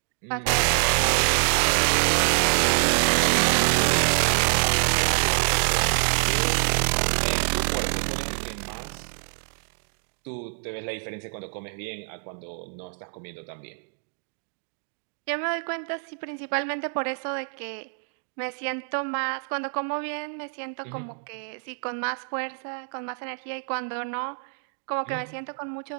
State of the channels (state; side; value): silent; left; digital silence